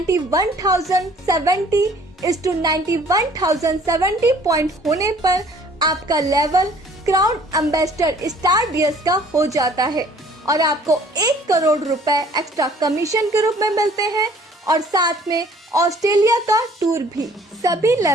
पॉइंट होने पर आपका level crown ambassador star DS का हो जाता है और आपको 1 करोड़ रुपए एक्स्ट्रा कमीशन के रूप में मिलते हैं और साथ में ऑस्ट्रेलिया का टूर भी। सभी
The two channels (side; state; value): both; normal; correlation 0.55